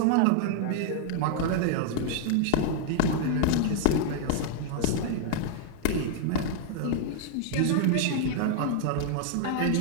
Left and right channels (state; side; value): different; both; correlation 0.00